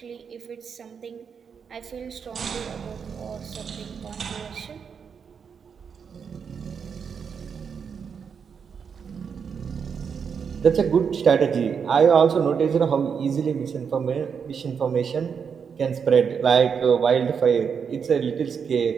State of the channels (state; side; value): quieter; left; 6.6 dB